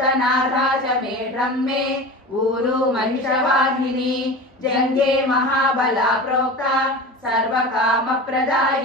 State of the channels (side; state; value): both; normal; correlation 0.32